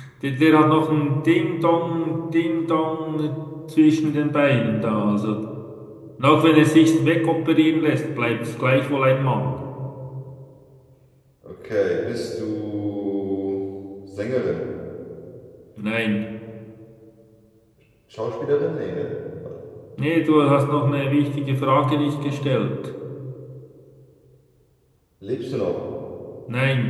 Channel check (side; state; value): both; identical; correlation 1.00